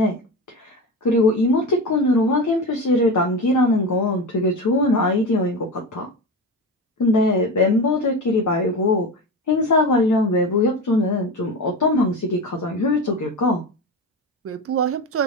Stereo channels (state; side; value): normal; both; correlation 0.24